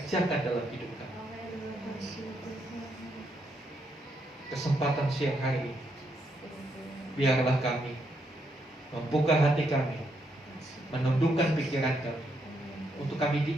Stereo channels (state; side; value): normal; both; correlation 0.77